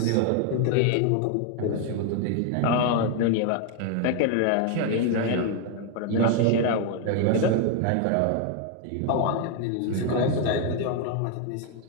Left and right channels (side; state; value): both; different; correlation 0.00